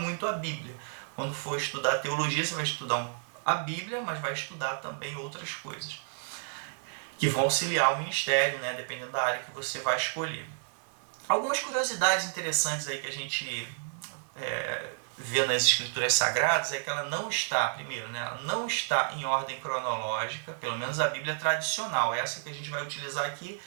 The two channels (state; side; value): silent; left; 56 dB below the other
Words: a Bíblia. Quando for estudar teologia, você vai estudar a Bíblia, mas vai estudar também outras coisas que vão auxiliar o ministério, né, dependendo da área que você vai escolher. Algumas curiosidades interessantes aí que a gente vê nas escrituras sagradas é que ela não está, primeiro, né, ela não está em ordem cronológica, pelo menos a Bíblia tradicional. Essa que a gente vai utilizar aqui